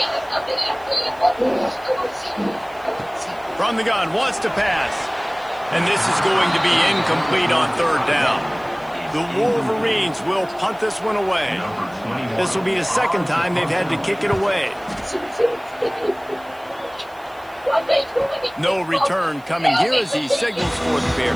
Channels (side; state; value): right; noise; hiss, 28 dB below the sound